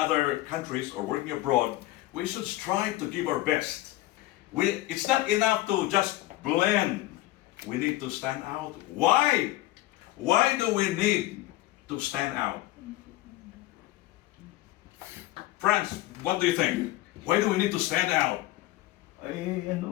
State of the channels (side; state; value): right; quieter; 16.9 dB